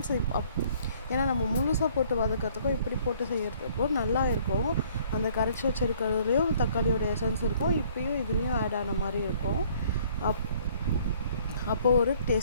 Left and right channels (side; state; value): both; inverted; correlation -0.59